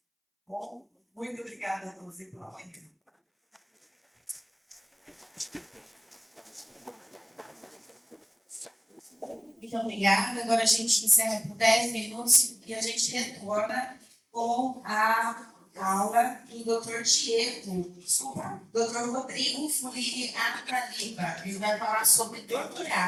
Bom, muito obrigada a todos e pela manhã. Muito obrigada. Agora a gente encerra por 10 minutos e a gente retorna com a aula do Dr. Dr. Rodrigo Fulini Ataliba. Ele vai falar sobre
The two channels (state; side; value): identical; both; correlation 1.00